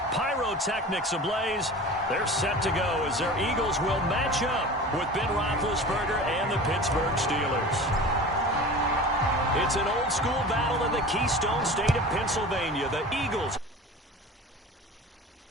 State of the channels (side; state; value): both; normal; correlation 0.36